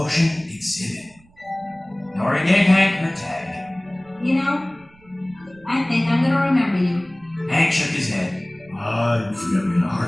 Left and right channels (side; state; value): right; noise; rumble, 29 dB below the sound